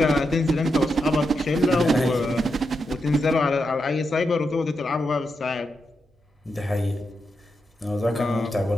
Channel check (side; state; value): both; normal; correlation 0.85